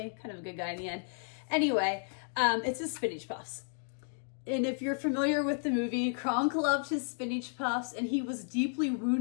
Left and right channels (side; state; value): right; silent; 56 dB below the other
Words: Kind of a good guy in the end. Anyway, it's his spinach puffs. And if you're familiar with the movie, Kronk loved his spinach puffs, and he was deeply